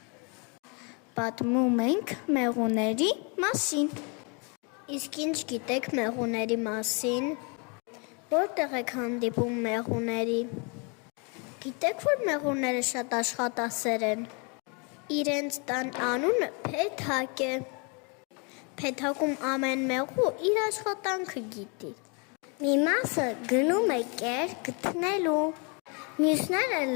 Պատմում ենք մեղուների մասին։ Իսկ ինչ գիտեք մեղուների մասին։ Որտեղ եք հանդիպում մեղուների։ Գիտեք, որ մեղուները շատ աշխատասեր են։ Իրենց տան անունը Փեթակ է։ Փեթակում ամեն մեղու իր աշխատանքը գիտի։ Մի մասը գնում է կեր գտնելու, մյուսները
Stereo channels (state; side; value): quieter; right; 33.8 dB